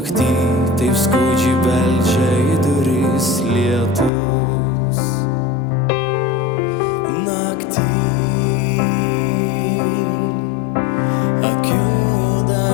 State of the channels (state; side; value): drops out; right; at 4.1 s